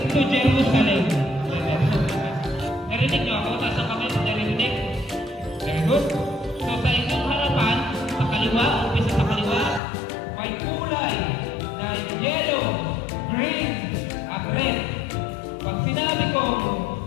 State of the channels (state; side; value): drops out; right; at 9.8 s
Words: to Jerusalem. Narinig nyo ako? Nasa comment, narinig? Very good. So sa inyong harapan, sa kaliwa, umpisa sa kaliwa, may kulay na yellow, green, at red. Pag sinabi ko,